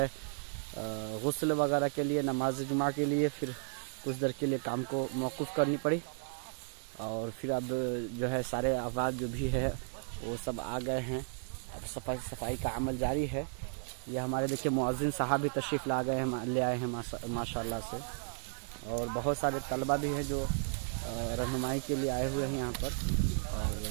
गुस्ल वगैरह के लिए नमाज जुमा के लिए फिर कुछ देर के लिए काम को मौकूफ़ करनी पड़ी और फिर अब जो है सारे अफराद जो भी है वो सब आ गए हैं। अब सफाई का अमल जारी है। ये हमारे देखिए मुअज्जिन साहब भी तशरीफ़ ले आए हैं माशाल्लाह से और बहुत सारे तलबा भी हैं जो रहनुमाई के लिए आए हुए हैं यहाँ पर और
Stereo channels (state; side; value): silent; left; 55 dB below the other